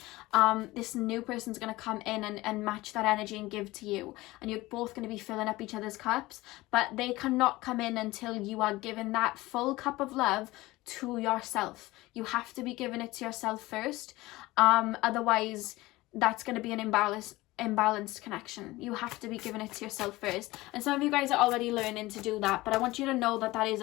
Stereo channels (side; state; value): right; quieter; 19.3 dB